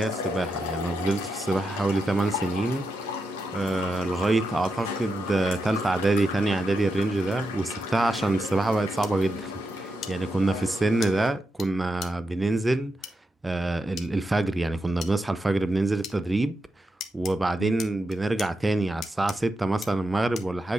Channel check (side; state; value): both; normal; correlation 0.86